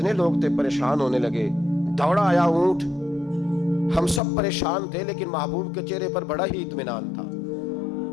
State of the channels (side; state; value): right; drops out; at 4.2 s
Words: لوگ تھے پریشان ہونے لگے، دوڑا آیا اونٹ، ہم سب پریشان تھے لیکن محبوب کے چہرے پر بڑا ہی اطمینان تھا۔